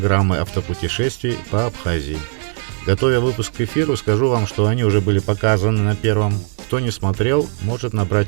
автопутешествий по Абхазии. Готовя выпуск к эфиру, скажу вам, что они уже были показаны на Первом. Кто не смотрел, может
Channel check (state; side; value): silent; left; digital silence